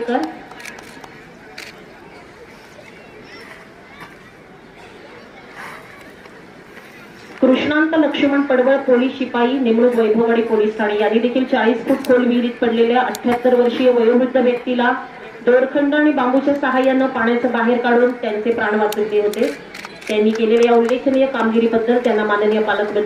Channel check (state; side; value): identical; both; correlation 1.00